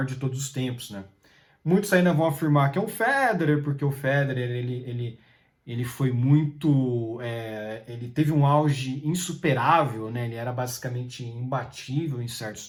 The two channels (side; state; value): both; identical; correlation 1.00